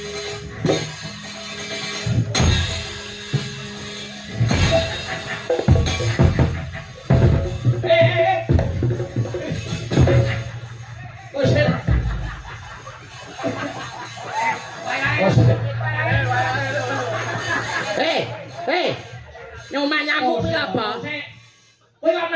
Nyomah nyamuk kuwi apa? Kowe kok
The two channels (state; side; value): identical; both; correlation 1.00